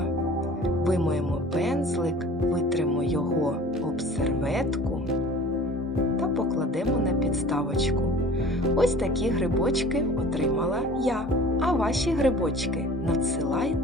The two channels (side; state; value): both; normal; correlation 0.45